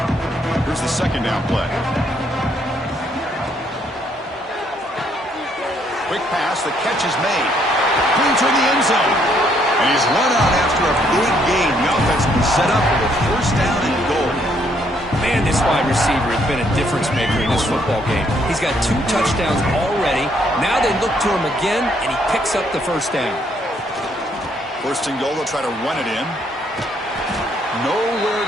Here's the second down play. Quick pass, the catch is made. Into the end zone. And he's run out after a big gain. The offense been set up for a first down and goal. Man, this wide receiver has been a difference maker in this football game. He's got 2 touchdowns already. Now they look to him again, and he picks up the first down. First and goal, they'll try to run it in. Nowhere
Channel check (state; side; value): normal; both; correlation 0.69